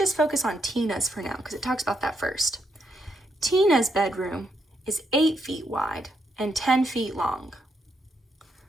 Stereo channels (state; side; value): normal; both; correlation 0.78